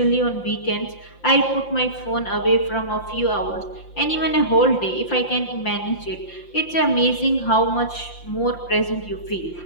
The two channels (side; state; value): right; late; 5.8 ms